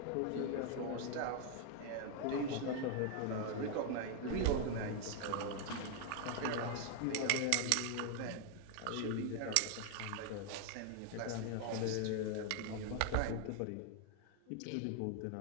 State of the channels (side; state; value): both; different; correlation 0.00